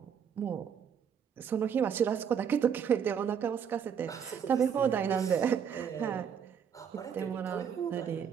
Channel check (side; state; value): left; quieter; 7.7 dB